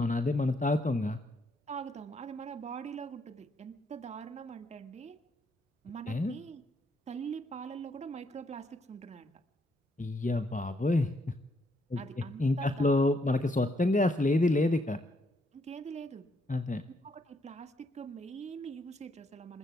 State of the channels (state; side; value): normal; both; correlation 0.73